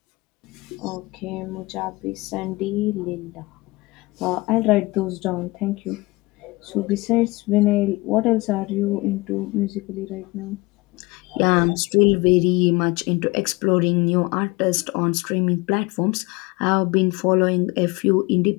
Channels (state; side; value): quieter; right; 23.2 dB